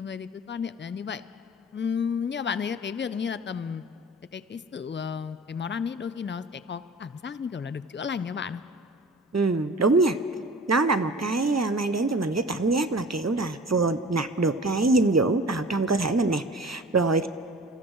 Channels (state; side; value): normal; both; correlation 0.41